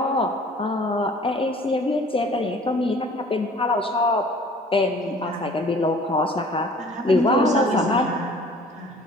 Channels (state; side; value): normal; both; correlation 0.51